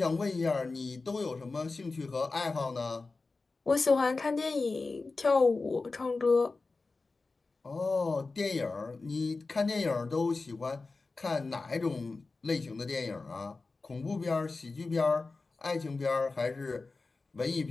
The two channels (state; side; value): quieter; right; 3.8 dB